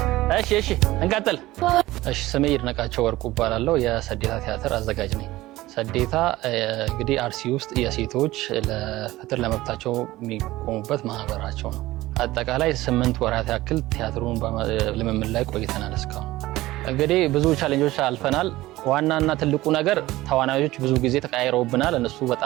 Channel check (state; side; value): quieter; left; 17.5 dB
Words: እሺ እንቀጥል። እሺ ስሜ ይድነቃቸው ወርቁ እባላለሁ። የሰዴታ ቲያትር አዘጋጅ ነኝ። ሰዴታ እንግዲህ አርሲ ውስጥ የሴቶች ለፍትህ ለመብታቸው የሚቆሙበት ማህበራቸው ነው። አጠቃላይ 8 ወራት ያክል ቲያትሩን ልምምድ ላይ ቆይተናል። እስካሁን እንግዲህ ብዙ ቻሌንጆች አልፈናል። ዋናና ትልቁ ነገር ተዋናዮች ብዙ ጊዜ ተቀያይረውብናል። እነሱ